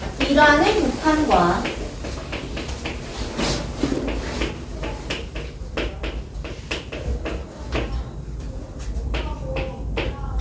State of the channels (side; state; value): both; identical; correlation 1.00